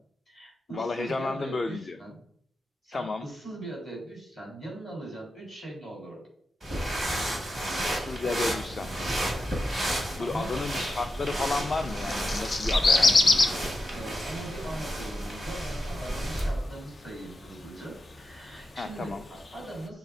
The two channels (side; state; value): both; normal; correlation 0.88